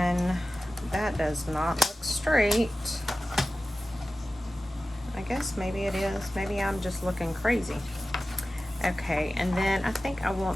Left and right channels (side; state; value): both; normal; correlation 0.95